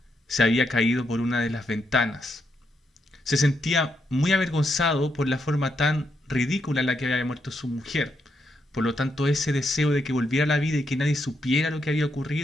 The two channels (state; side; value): normal; both; correlation 0.80